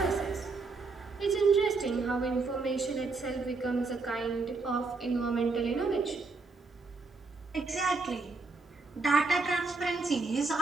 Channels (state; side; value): quieter; left; 4.0 dB